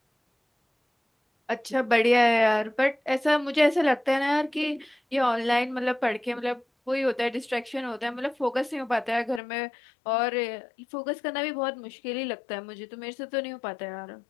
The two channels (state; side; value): drops out; right; at 9.4 s